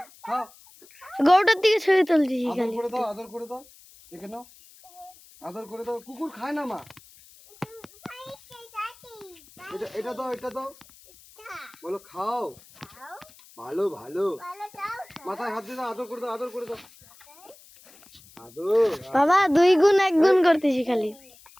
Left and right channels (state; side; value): noise; left; hiss, 24 dB below the sound